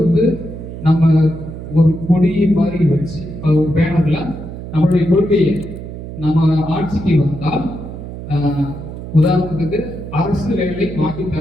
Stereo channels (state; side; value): noise; right; hum, 10 dB below the sound